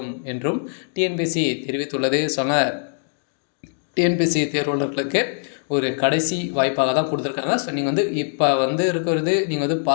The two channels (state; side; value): silent; right; digital silence